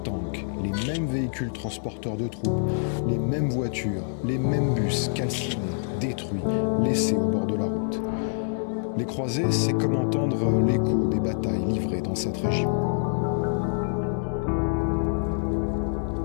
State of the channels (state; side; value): silent; right; 61 dB below the other